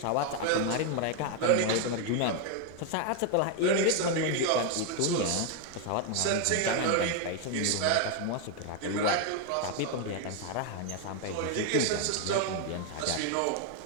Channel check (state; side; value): different; both; correlation 0.01